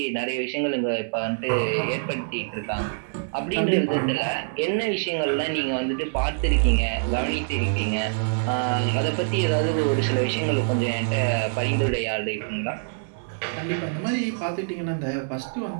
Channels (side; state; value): left; silent; 59 dB below the other